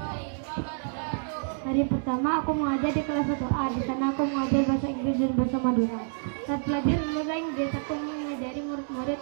Hari pertama aku mengajar di kelas 1A. Di sana aku mengajar bahasa Inggris dan bahasa Madura. Saat pelajaran bahasa Inggris, aku mengajari murid-murid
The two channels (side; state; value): left; silent; digital silence